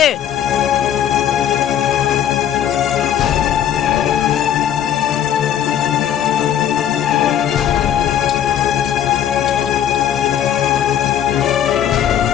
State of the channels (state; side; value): quieter; right; 10.1 dB